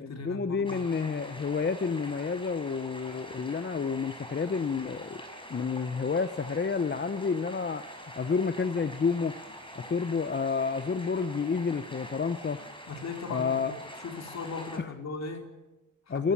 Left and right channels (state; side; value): quieter; right; 4.7 dB